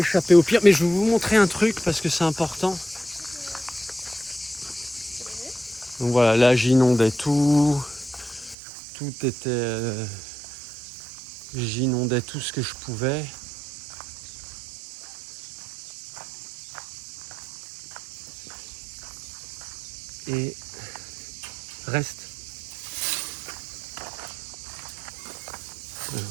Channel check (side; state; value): left; drops out; at 8.6 s